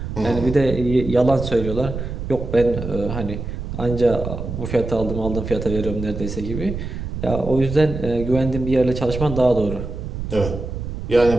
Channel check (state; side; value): noise; right; rumble, 6 dB below the sound